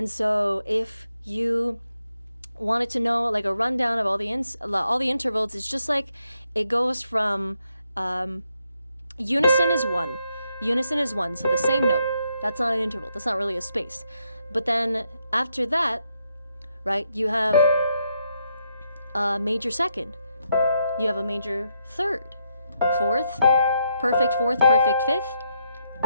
so if you wanted to know like a rundown of all the intervals, it's just like it goes from unison is one, so the same note. That's not an interval. That's not really a space. But then after that, right, you have a major second. You have a major third, fourth, perfect fifth,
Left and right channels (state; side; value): inverted; both; correlation -0.79